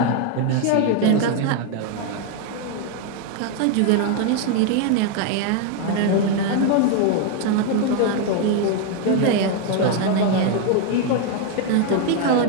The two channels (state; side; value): different; both; correlation 0.01